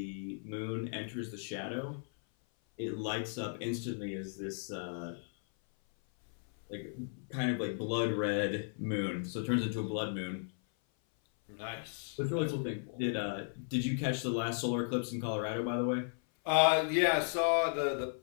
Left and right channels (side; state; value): right; silent; 54 dB below the other